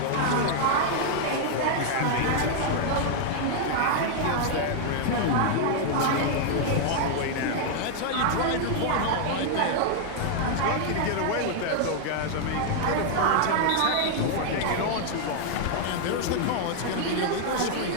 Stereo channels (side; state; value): both; different; correlation 0.00